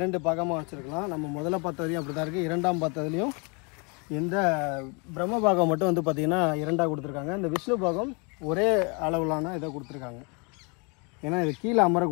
பாகமாக வச்சுருக்கலாம். நம்ம முதல்ல பார்த்ததுலையும் அப்படி தான் இருக்குது. 2ஆம் பார்த்ததுலையும் இந்த பிரம்ம பாகம் மட்டும் வந்து பார்த்திங்கன்னா 2ஆக கொடுத்துருக்காங்க. இந்த விஷ்ணு பாகம் ஒரே அளவிலான இதை கொடுத்துருக்காங்க. ஏன்னா இது கீழே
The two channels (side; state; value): right; quieter; 32.9 dB